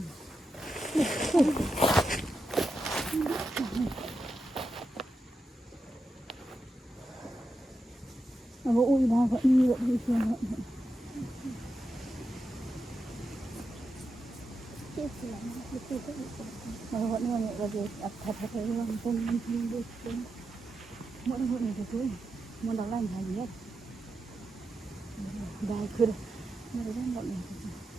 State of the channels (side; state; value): both; normal; correlation 0.88